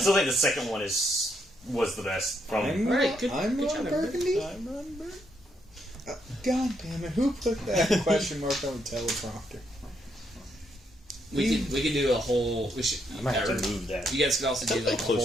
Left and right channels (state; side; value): normal; both; correlation 0.76